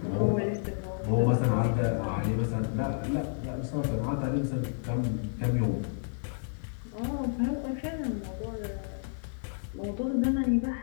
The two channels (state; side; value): silent; right; 57 dB below the other